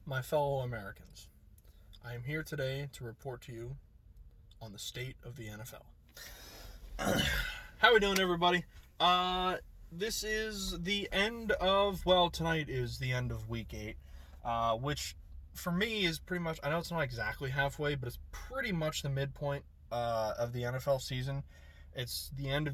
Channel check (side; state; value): both; identical; correlation 1.00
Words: My fellow Americans, I am here today to report to you on the state of the NFL. How we doing, everybody? This is the end of, tonight is the end of week 8, which for me is pretty much, I know it's not exactly halfway, but it's pretty much the midpoint of the NFL season. It's the end of